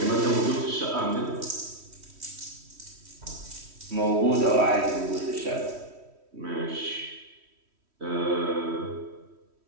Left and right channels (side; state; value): left; late; 3.1 ms